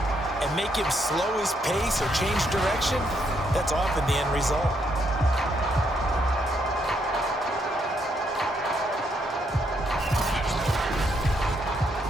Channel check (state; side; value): normal; both; correlation 0.75